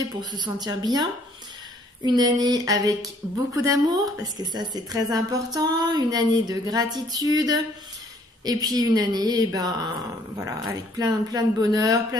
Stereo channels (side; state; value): both; normal; correlation 0.62